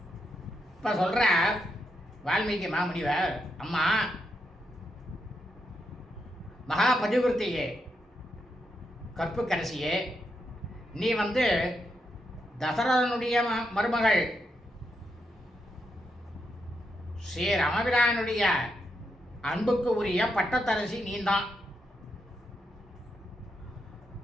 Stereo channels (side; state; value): both; normal; correlation 0.82